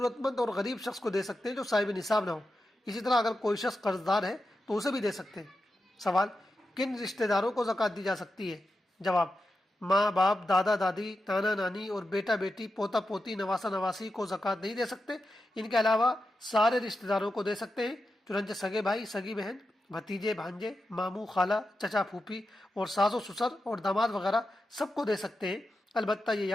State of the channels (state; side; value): normal; both; correlation 0.89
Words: مند اور غریب شخص کو دے سکتے ہیں جو صاحب نصاب نہ ہو۔ اسی طرح اگر کوئی شخص قرض دار ہے تو اسے بھی دے سکتے ہیں۔ سوال، کن رشتہ داروں کو زکوٰۃ دی جا سکتی ہے؟ جواب، ماں باپ، دادا دادی، نانا نانی اور بیٹا بیٹی، پوتا پوتی، نواسا نواسی کو زکوٰۃ نہیں دے سکتے۔ ان کے علاوہ سارے رشتہ داروں کو دے سکتے ہیں، چنانچہ سگے بھائی، سگی بہن، بھتیجے، بھانجے، ماموں، خالہ، چچا، پھوپھی اور ساس و سسر اور داماد وغیرہ سب کو دے سکتے ہیں۔ البتہ یہ